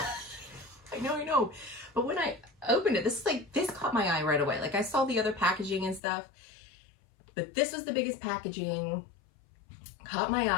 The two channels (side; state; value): right; drops out; at 6.0 s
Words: I know. But when I opened it, this caught my eye right away. Like, I saw the other packaging and stuff, but this was the biggest packaging, caught my